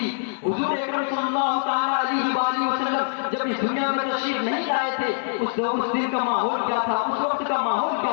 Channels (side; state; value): right; silent; digital silence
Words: حضور اکرم صلی اللہ تعالیٰ علیہ وآلہ وسلم جب اس دنیا میں تشریف نہیں لائے تھے اس دن کا ماحول کیا تھا، اس وقت کا ماحول کیا